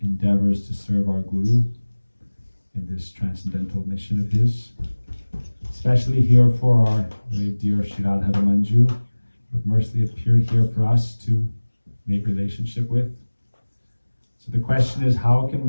endeavors to serve our Guru in this transcendental mission of his. Especially here for our very dear Shirad Manju, who have mercifully appeared here for us to make relationship with. So the question is, how can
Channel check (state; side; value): inverted; both; correlation -1.00